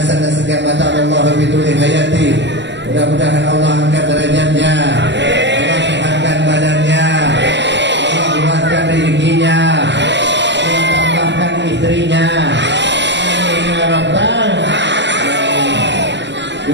Nasegah Mata Allah Biduli Hayati. Mudah-mudahan Allah angkat derajatnya, Allah sehatkan badannya, Allah luaskan rezekinya, Allah tambahkan istrinya.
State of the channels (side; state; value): left; late; 0.52 ms